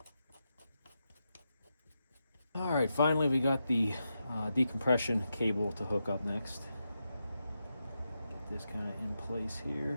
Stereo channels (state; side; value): inverted; both; correlation -0.87